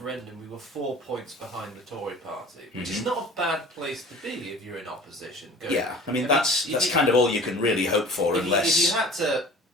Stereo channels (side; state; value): both; normal; correlation 0.43